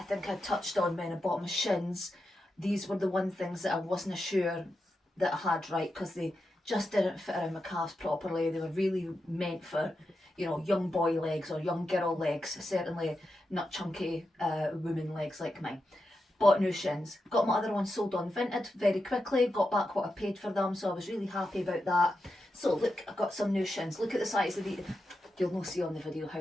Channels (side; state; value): both; normal; correlation 0.88